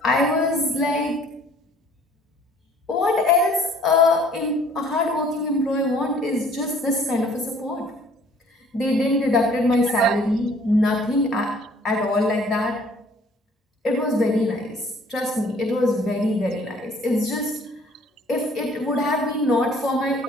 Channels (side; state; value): both; normal; correlation 0.56